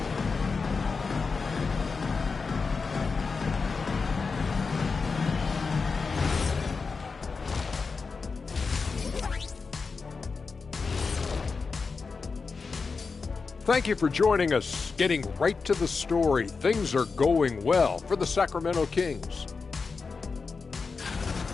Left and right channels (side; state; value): right; quieter; 4.7 dB